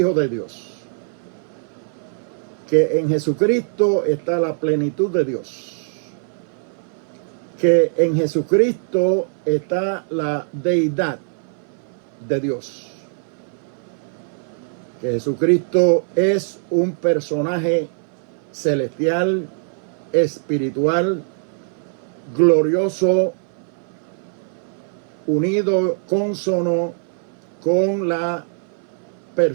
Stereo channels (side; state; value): left; silent; 60 dB below the other